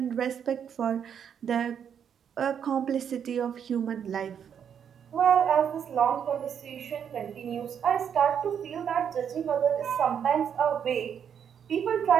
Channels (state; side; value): quieter; left; 8.1 dB